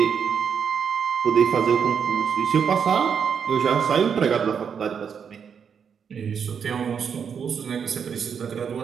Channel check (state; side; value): quieter; left; 7.0 dB